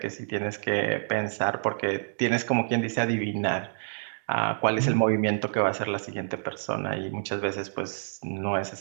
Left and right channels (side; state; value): left; silent; digital silence